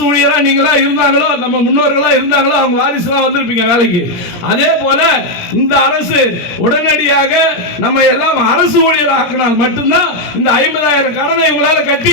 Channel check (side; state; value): right; late; 17 ms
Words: ஊழியரா நீங்களா இருந்தாங்களோ, நம்ம முன்னோர்களா இருந்தாங்களோ, அவங்க வாரிசுலாம் வந்திருப்பீங்க வேலைக்கு. அதே போல இந்த அரசு உடனடியாக நம்ம எல்லாம் அரசு ஊழியர் ஆக்கினால் மட்டும்தான் இந்த 50,000 கடனை இவங்களால